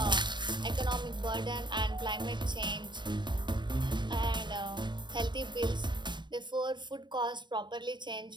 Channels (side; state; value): left; late; 0.22 ms